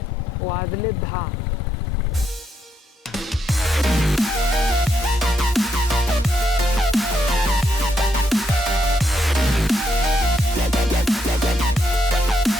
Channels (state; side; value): normal; both; correlation 0.78